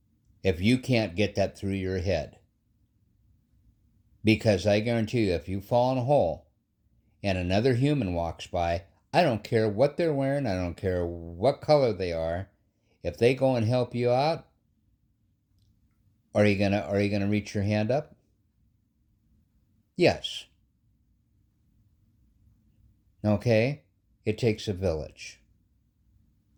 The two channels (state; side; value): identical; both; correlation 1.00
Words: If you can't get that through your head. Because I guarantee you, if you fall in a hole and another human walks by, I don't care what they're wearing, I don't care what color they are, if they go and help you out, are you gonna reach your hand up? Yes. Okay? It takes a village.